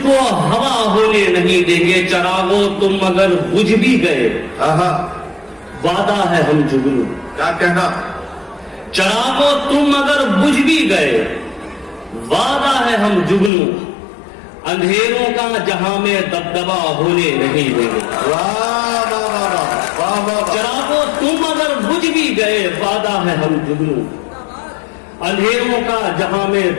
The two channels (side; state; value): right; drops out; at 13.5 s